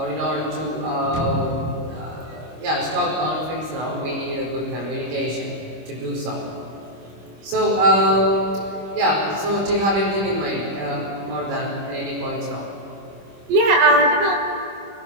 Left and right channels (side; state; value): left; late; 25 ms